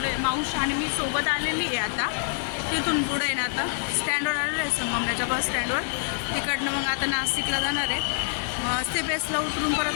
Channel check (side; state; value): right; silent; digital silence